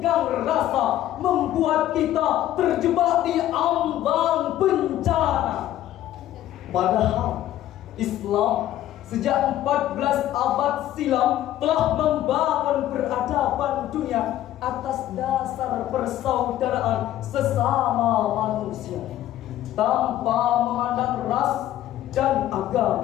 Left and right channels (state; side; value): quieter; right; 13.1 dB